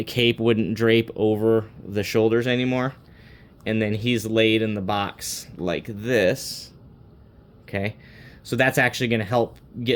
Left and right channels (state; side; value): identical; both; correlation 1.00